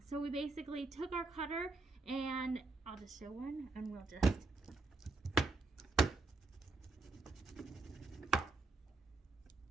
So we basically took our cutter, and I'll just show one, and we'll just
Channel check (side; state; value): left; quieter; 3.5 dB